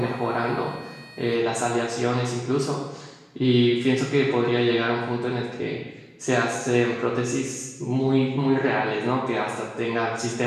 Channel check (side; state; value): both; identical; correlation 1.00